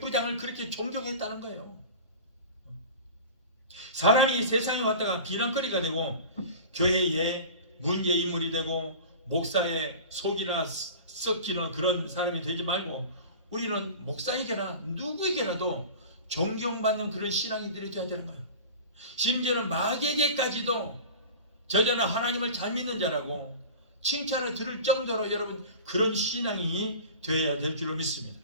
그렇게 존경했다는 거예요. 사람이 세상에 왔다가 비난거리가 되고 교회의 문제인물이 되고 목사의 속이나 썩히는 그런 사람이 되지 말고 우리는 목사에게나 누구에게라도 존경받는 그런 신앙인들이 되어야 되는 거예요. 심지어는 마귀에게까지도 저자는 하나님을 잘 믿는 자라고 칭찬을 들을 정도로 여러분 그런 신앙이 되어야 될 줄로 믿습니다.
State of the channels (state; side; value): inverted; both; correlation -0.36